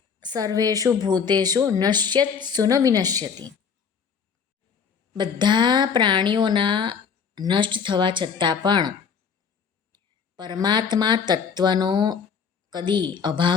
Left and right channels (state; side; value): quieter; right; 6.5 dB